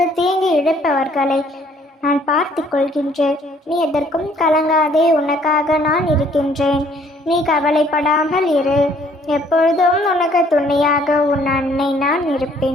தீங்கு இழைப்பவர்களை நான் பார்த்து கொள்கின்றேன். நீ எதற்கும் கலங்காதே. உனக்காக நான் இருக்கின்றேன். நீ கவலைப்படாமல் இரு. எப்பொழுதும் உனக்கு துணையாக உன் அன்னை நான்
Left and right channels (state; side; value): normal; both; correlation 0.61